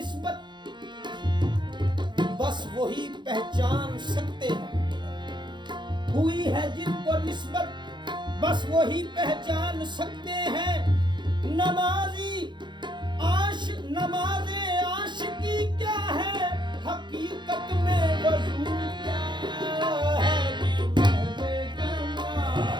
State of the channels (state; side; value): late; left; 0.22 ms